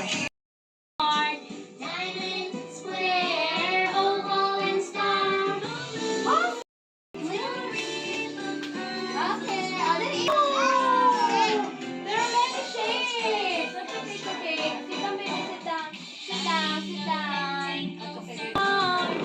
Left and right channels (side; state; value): both; identical; correlation 1.00